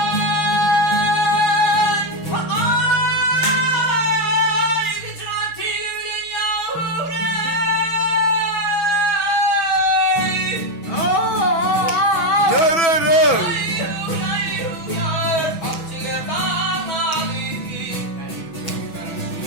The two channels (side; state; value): right; late; 6.1 ms